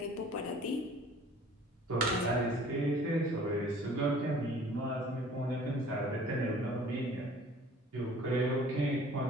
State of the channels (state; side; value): normal; both; correlation 0.50